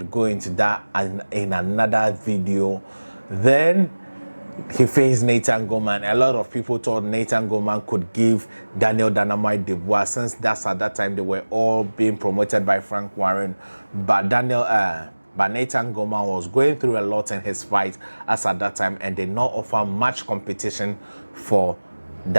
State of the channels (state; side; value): inverted; both; correlation -1.00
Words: into that in another video. Then he faced Nathan Gorman. A lot of people thought Nathan Gorman could give Daniel Dynamite Dubois, since that's at that time they were all being promoted by Frank Warren. But Nathan Gorman was going through a lot in his fight as at that time and did not offer much competition for